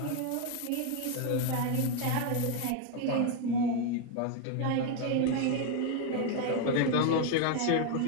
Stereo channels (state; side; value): different; both; correlation 0.01